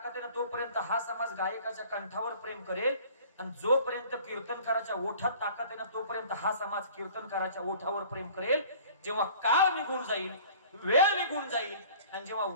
आहे ना तोपर्यंत हा समाज गायकाच्या कंठावर प्रेम करेल. आणि जोपर्यंत कीर्तनकाराच्या ओठात ताकद आहे ना तोपर्यंत हा समाज कीर्तनकाराच्या ओठावर प्रेम करेल. जेव्हा काळ निघून जाईल, वेळ निघून जाईल आणि जेव्हा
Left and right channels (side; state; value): both; inverted; correlation -0.48